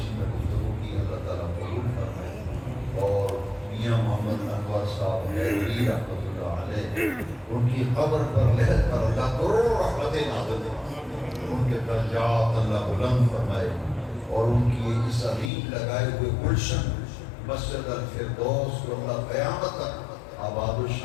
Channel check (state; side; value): drops out; right; at 15.5 s